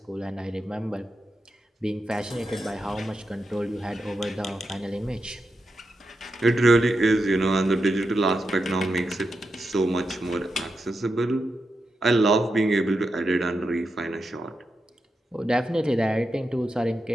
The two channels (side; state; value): both; normal; correlation 0.87